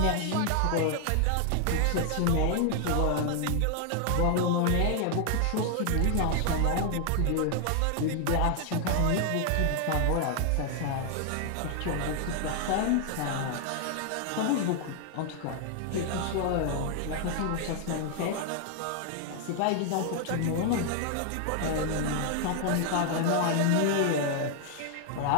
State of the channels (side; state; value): both; different; correlation 0.00